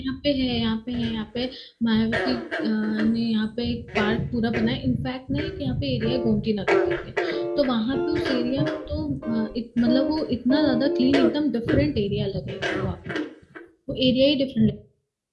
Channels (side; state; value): both; identical; correlation 1.00